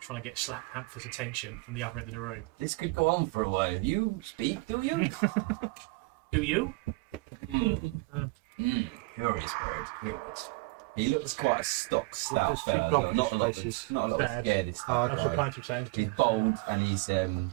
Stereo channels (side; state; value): left; quieter; 24.9 dB